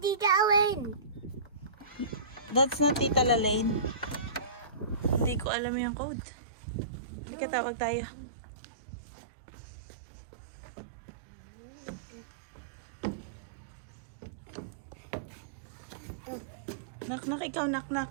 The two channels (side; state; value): left; drops out; at 5.5 s